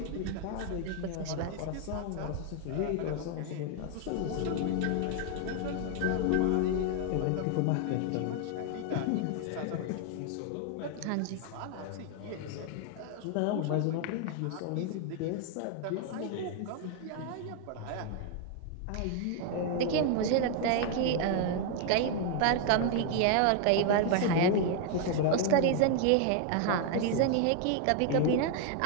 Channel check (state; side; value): different; both; correlation 0.00